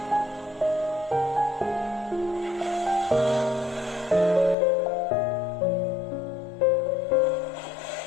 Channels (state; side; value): drops out; right; at 4.5 s